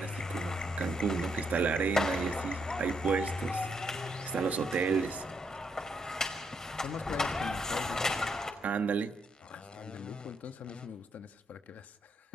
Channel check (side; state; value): both; normal; correlation 0.76